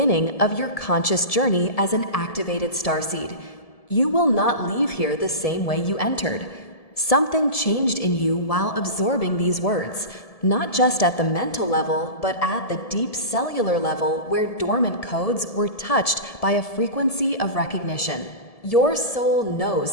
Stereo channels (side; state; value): right; late; 1.7 ms